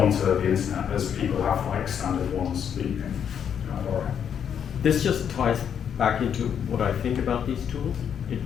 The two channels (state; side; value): quieter; right; 8.2 dB